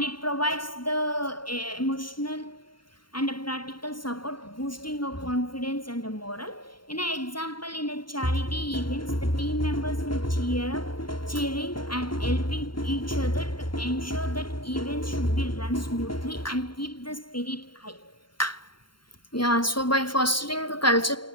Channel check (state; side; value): late; right; 0.73 ms